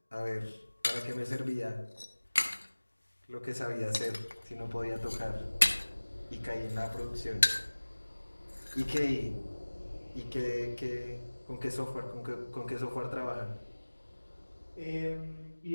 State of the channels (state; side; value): inverted; both; correlation -1.00